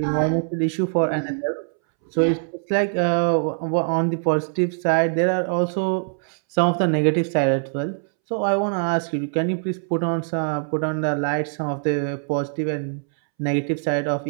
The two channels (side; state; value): left; silent; 64 dB below the other